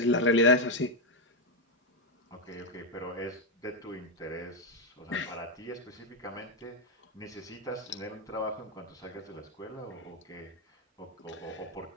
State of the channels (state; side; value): normal; both; correlation 0.04